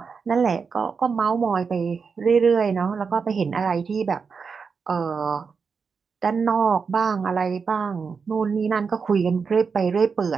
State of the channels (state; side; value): quieter; left; 5.5 dB